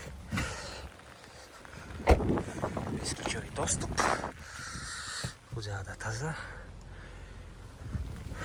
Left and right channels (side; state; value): both; identical; correlation 1.00